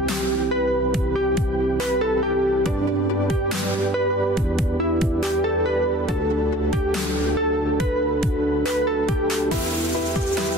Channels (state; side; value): normal; both; correlation 0.49